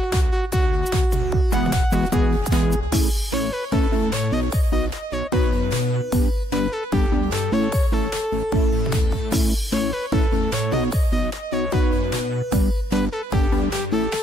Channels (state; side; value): normal; both; correlation 0.76